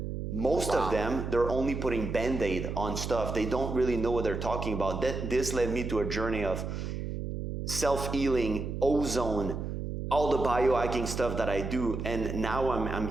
most of them, they're only putting Band-Aid on stuff. They don't really know what they're talking about. This led me to a journey of self-healing, ozone, all the biohacking stuff that I do, and now I'm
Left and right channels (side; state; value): right; noise; hum, 5 dB below the sound